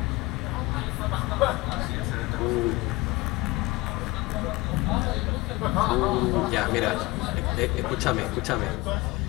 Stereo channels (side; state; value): right; quieter; 22.1 dB